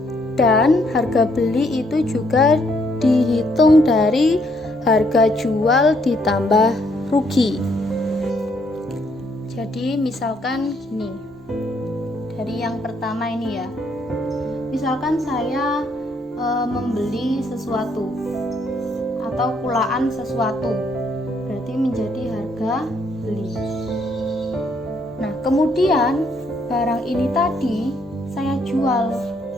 Dan harga beli itu juga dihitung dari harga jual ditambah rugi. Jadi misalkan gini, dari yang pertama ini ya, misalkan saya membeli sesuatu atau kulaan sesuatu, berarti menjadi harga beli. Nah, kemudian barang ini tadi saya jual,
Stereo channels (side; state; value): both; normal; correlation 0.71